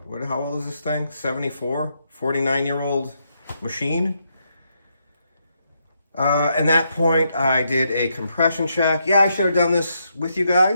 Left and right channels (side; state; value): both; inverted; correlation -0.79